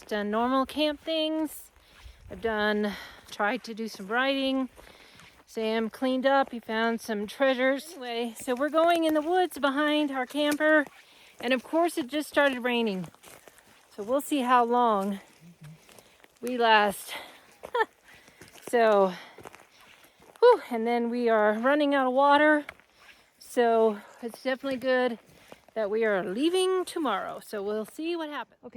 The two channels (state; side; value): identical; both; correlation 1.00